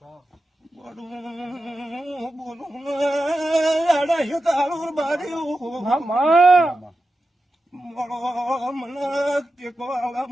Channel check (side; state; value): both; normal; correlation 0.91